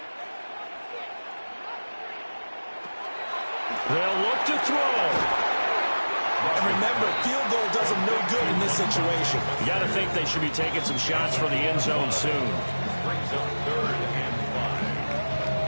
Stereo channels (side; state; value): both; inverted; correlation -1.00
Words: They'll look to throw. And remember, field goal does them no good in this situation. You got to think they should be taking some shots for the end zone soon. Brings up 3rd and